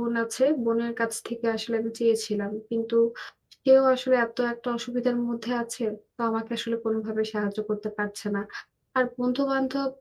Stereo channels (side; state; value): both; identical; correlation 1.00